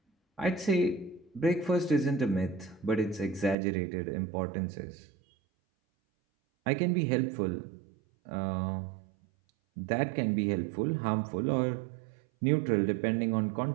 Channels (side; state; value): left; drops out; at 3.6 s